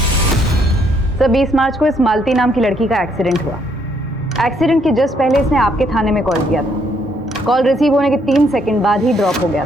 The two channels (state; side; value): normal; both; correlation 0.70